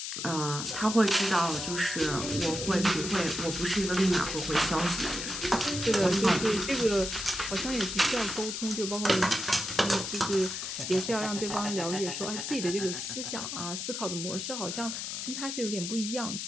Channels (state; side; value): noise; left; hiss, 5 dB below the sound